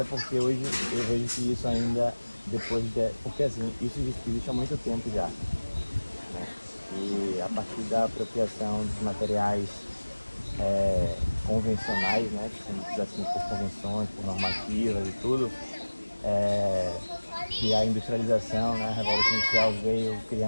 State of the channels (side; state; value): both; inverted; correlation -1.00